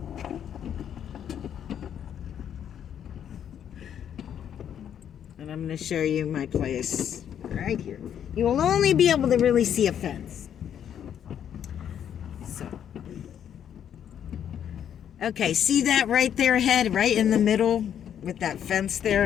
And I'm going to show you my place right here. You will only be able to really see a fence. So, okay, see that right there ahead, right in the middle with that fence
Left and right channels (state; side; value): quieter; right; 9.3 dB